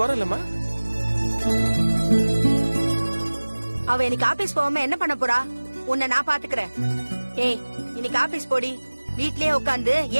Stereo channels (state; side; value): inverted; both; correlation -1.00